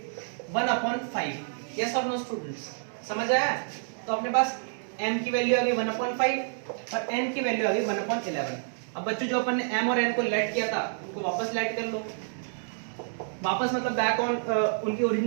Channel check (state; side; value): silent; left; digital silence